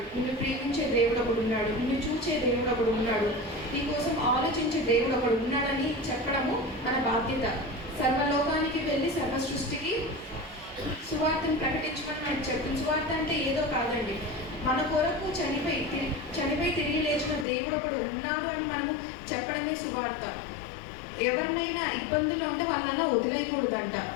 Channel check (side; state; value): right; drops out; at 17.4 s